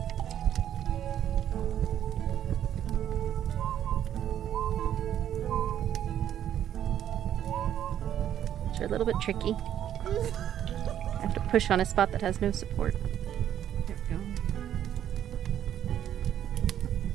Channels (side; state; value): left; quieter; 10.5 dB